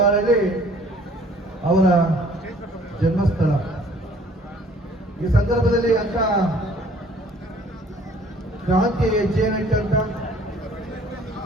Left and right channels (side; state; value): both; normal; correlation 0.56